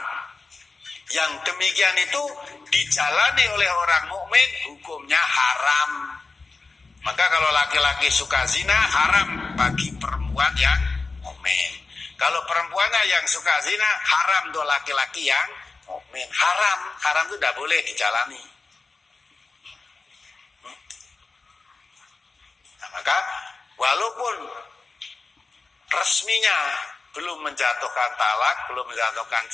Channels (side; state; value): right; quieter; 4.0 dB